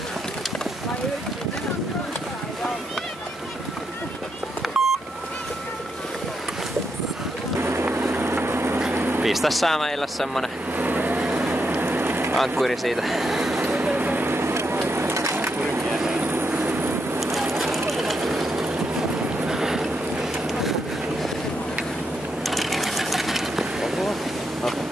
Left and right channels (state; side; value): normal; both; correlation 0.81